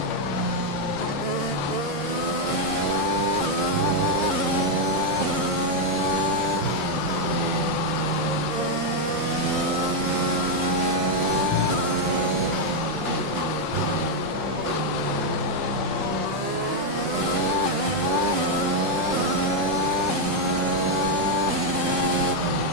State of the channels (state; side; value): late; left; 5.6 ms